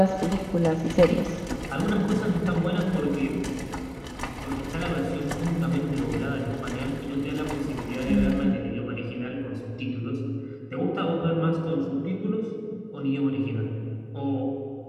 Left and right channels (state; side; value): identical; both; correlation 1.00